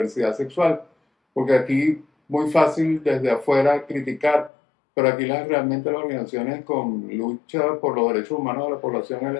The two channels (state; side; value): drops out; right; at 4.5 s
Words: sexual, porque aquí muy fácil desde afuera criticar, pero aquí realmente las organizaciones con lucha por los derechos humanos de la población